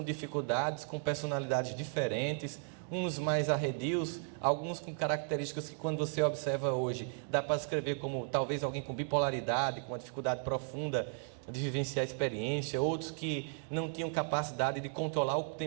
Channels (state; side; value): silent; left; 54 dB below the other